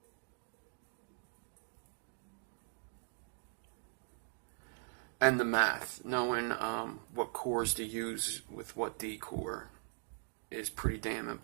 And the math, knowing what cores to use with what D core is pretty damn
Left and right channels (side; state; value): left; silent; digital silence